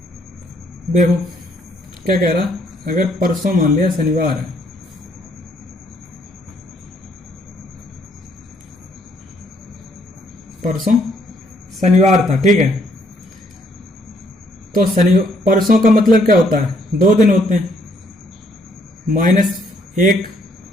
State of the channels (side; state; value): both; normal; correlation 0.68